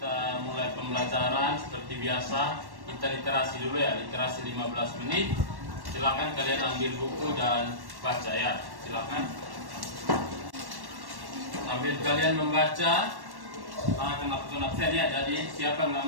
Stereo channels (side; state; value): left; late; 1.1 ms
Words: mulai pembelajaran seperti biasa, kita literasi dulu ya, literasi 15 menit. Silakan kalian ambil buku dan baca ya, silakan. Sambil kalian membaca, akan lakukan absen ya. Jadi siapa yang